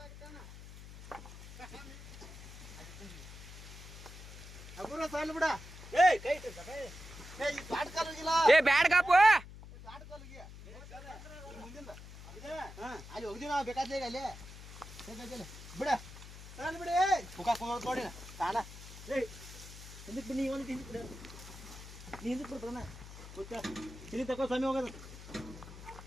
ಏ ಬ್ಯಾಡ್ ಕಾಪು ಅಲ್ಲಿ ಹೋಗಿದ್ದೀವಿ ನಾವು ಬೇಕಾದ್ರೆ ಅಲ್ಲಿ ಬಿಡ ಬಿಡಿ ಮುಖ ನೋಡಿ ತಾಣ ಹಿಂದಕ್ಕೆ ಬನ್ನಿ ಒಂದು ಹಿಂದಕ್ಕೆ ಬಿಡ ನೀ ಹಿಂದಕ್ಕೆ ಬಿಡ್ತಾನ ಇಲ್ಲಿ ತಗೋ ಸ್ವಾಮಿ ಹೋಗೋದು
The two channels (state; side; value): noise; left; hum, 14 dB below the sound